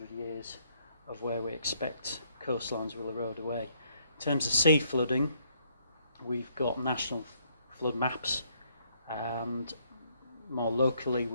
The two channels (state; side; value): inverted; both; correlation -0.69